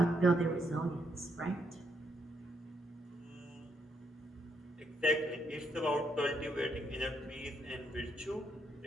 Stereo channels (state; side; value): normal; both; correlation 0.76